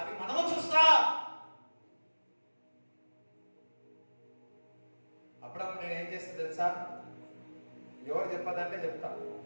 మనము చూస్తా. అప్పుడప్పుడు నేను ఏం చేస్తా తెలుసా? ఎవరు చెప్పదంటే చెప్తా.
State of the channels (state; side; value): inverted; both; correlation -1.00